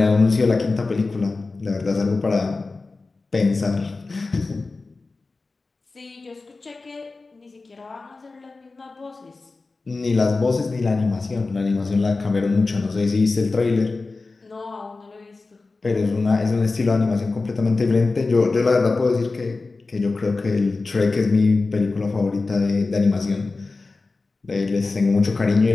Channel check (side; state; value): right; quieter; 3.7 dB